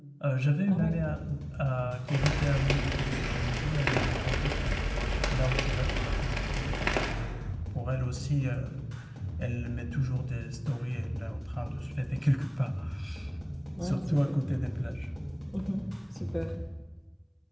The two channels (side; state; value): both; identical; correlation 1.00